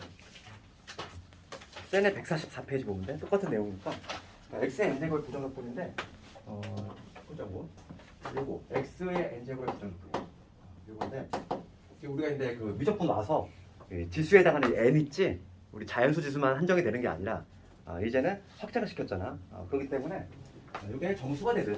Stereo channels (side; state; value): both; identical; correlation 1.00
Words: 센의 144페이지 보면 돼. 똑같은 내용이니까 x의 n제곱의 부정적분인데 보자고. 요거 x의 n제곱의 부정적분 요건데 우리가 이제 그 미적분 와서 지수에 해당하는 n 있지. 우리 자연수 지수만 한정이 되는 게 아니라 이제는 확장을 시켰잖아. 그렇기 때문에 이게 정수가 되든